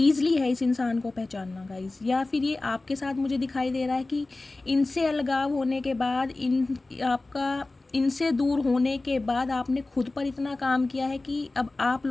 है इस इंसान को पहचानना गाइस। या फिर ये आपके साथ मुझे दिखाई दे रहा है कि इनसे अलगाव होने के बाद इनसे दूर होने के बाद आपने खुद पर इतना काम किया है कि अब आप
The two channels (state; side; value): quieter; right; 3.1 dB